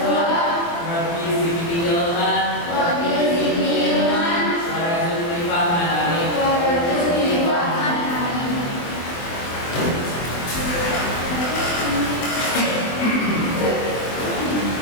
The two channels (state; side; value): late; right; 24 ms